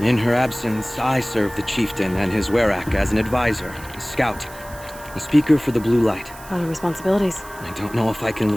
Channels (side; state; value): right; noise; hiss, 19 dB below the sound